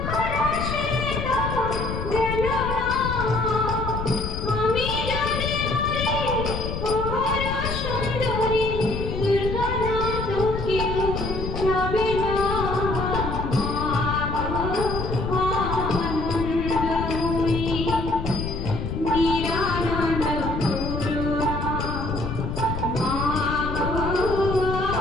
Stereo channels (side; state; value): left; noise; rumble, 4 dB below the sound